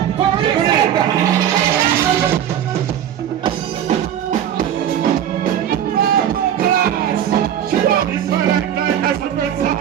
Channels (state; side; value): quieter; left; 10.1 dB